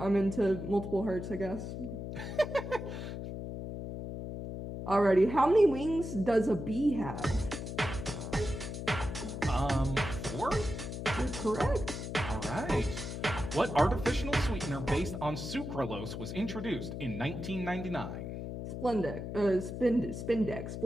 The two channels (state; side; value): noise; left; hum, 6 dB below the sound